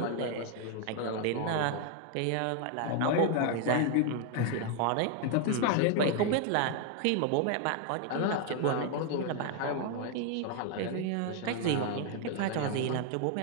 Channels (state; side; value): different; both; correlation 0.00